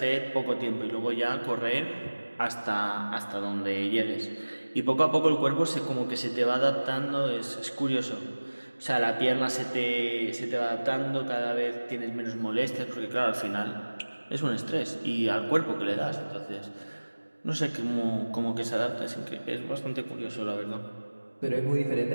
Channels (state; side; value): inverted; both; correlation -1.00